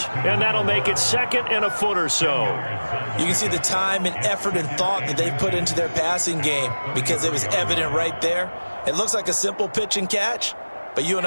And that'll make it second and a foot or so. You can see the time and effort and thought that they put into their passing game because it was evident right there. It looks like a simple pitch and catch, but you and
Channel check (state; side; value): inverted; both; correlation -1.00